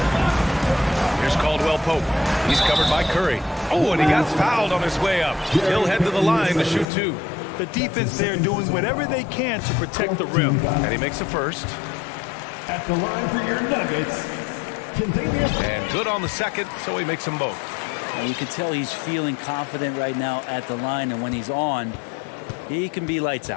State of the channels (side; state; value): right; drops out; at 6.9 s